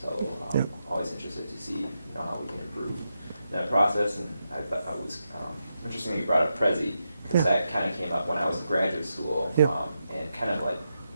So Yep. always interested to see how we can improve that process. And I thought it was interesting that you brought up Prezi, because Yeah. that kind of came up when I was in graduate school, Yeah. and kind of like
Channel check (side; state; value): both; inverted; correlation -0.86